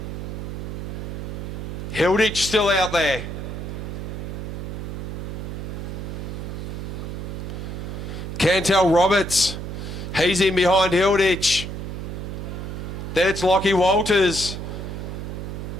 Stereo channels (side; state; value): right; noise; hum, 6 dB below the sound